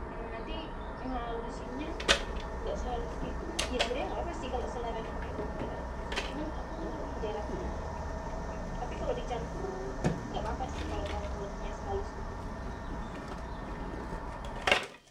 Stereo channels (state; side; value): identical; both; correlation 1.00